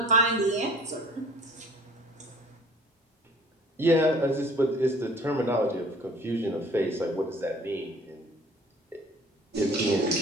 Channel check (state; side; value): normal; both; correlation 0.50